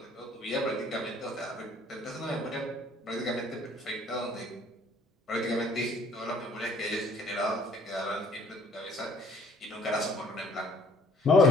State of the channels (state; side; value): normal; both; correlation 0.58